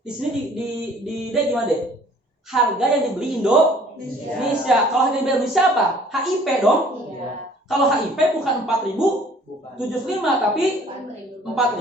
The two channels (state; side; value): normal; both; correlation 0.55